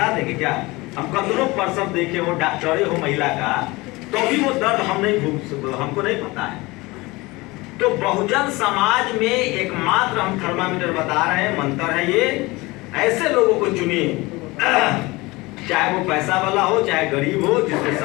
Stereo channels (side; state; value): right; quieter; 22.4 dB